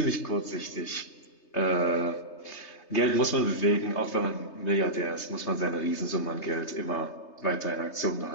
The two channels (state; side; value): late; right; 3.3 ms